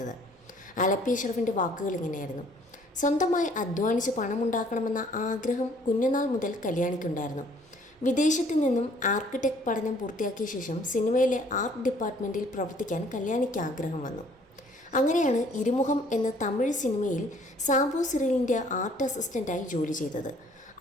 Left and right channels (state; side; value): normal; both; correlation 0.59